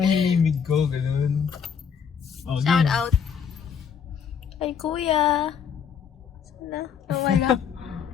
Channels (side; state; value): right; quieter; 7.2 dB